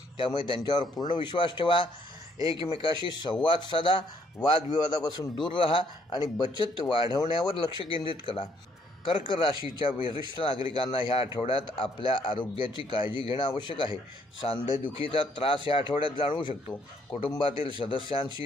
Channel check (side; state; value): both; normal; correlation 0.68